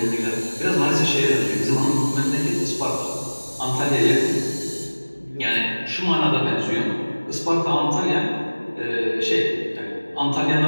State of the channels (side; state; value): both; inverted; correlation -1.00